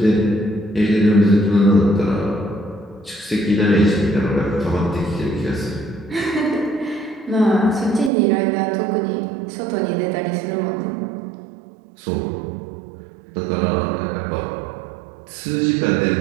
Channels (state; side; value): drops out; left; at 8.1 s